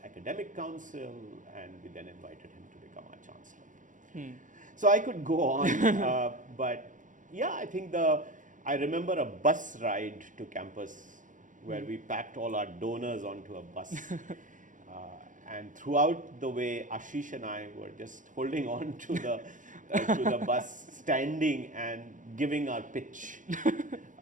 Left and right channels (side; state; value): left; late; 0.37 ms